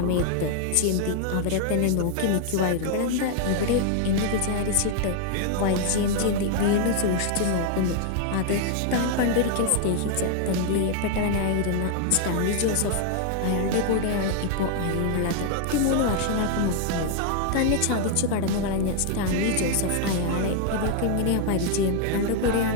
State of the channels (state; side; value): different; both; correlation 0.00